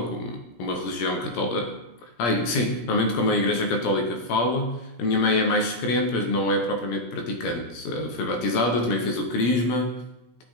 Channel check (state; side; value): late; right; 17 ms